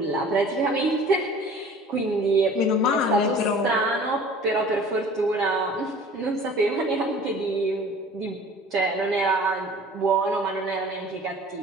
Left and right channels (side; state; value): both; normal; correlation 0.46